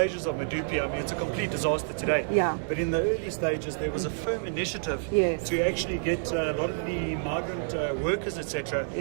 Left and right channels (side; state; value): left; silent; digital silence